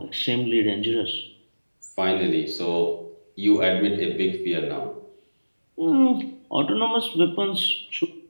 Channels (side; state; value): both; inverted; correlation -1.00